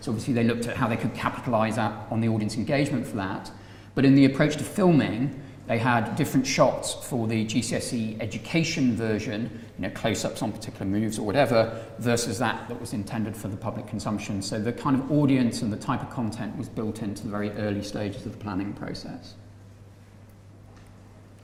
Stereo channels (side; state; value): both; identical; correlation 1.00